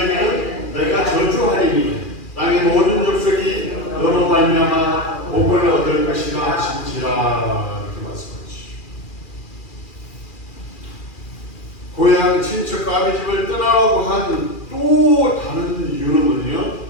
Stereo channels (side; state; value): right; late; 2.4 ms